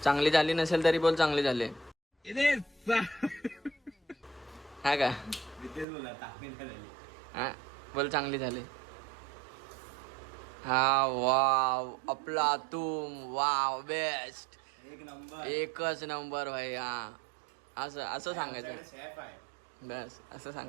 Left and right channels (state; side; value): drops out; left; at 5.9 s